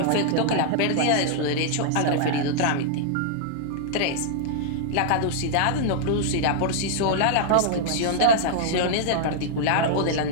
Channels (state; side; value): different; both; correlation -0.01